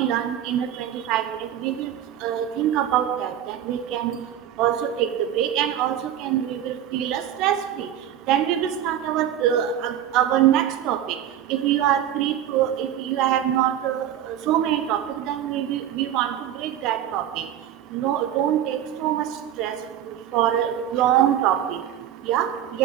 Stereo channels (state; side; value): quieter; left; 10.7 dB